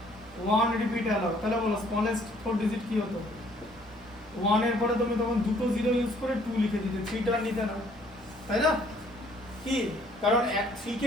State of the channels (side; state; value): both; normal; correlation 0.61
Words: 1 রিপিট অ্যালাউ। তাহলে বলো স্মলেস্ট 4 ডিজিট কি হতো? 1 এর পরে তুমি তখন দুটো 0 ইউজ করে 2 লিখে দিতে, 3 টা নিতে না, তাই না? কি কারণ 3